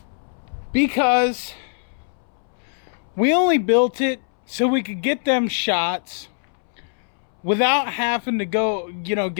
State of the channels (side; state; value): right; silent; 64 dB below the other